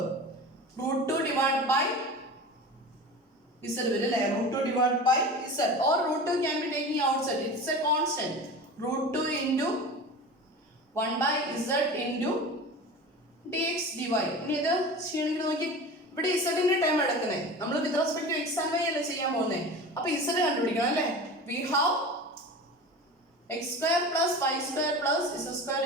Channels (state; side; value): normal; both; correlation 0.33